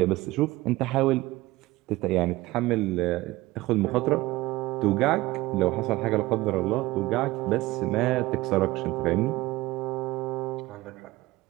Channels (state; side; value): quieter; left; 19.0 dB